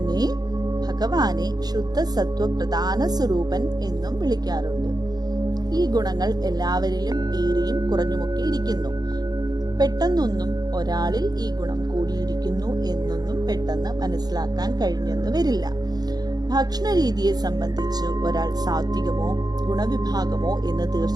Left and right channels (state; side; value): late; left; 0.19 ms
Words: ഭഗവാനെ ശുദ്ധ സത്വ പ്രധാന സ്വരൂപൻ എന്നും വിളിക്കാറുണ്ട്. ഈ ഗുണങ്ങൾ എല്ലാവരിലും ഏറിയും കുറഞ്ഞുമൊക്കെ ഇരിക്കുന്നു. പെട്ടെന്നൊന്നും ഒരാളിൽ ഈ ഗുണം കൂടിയിരിക്കുന്നു എന്നൊന്നും പെട്ടെന്ന് മനസ്സിലാക്കാൻ കഴിഞ്ഞെന്ന് വരില്ല. ഭക്ഷണ രീതിയെ സംബന്ധിച്ച് ഒരാൾ സാത്വികമോ ഗുണവിഭാഗമോ എന്ന്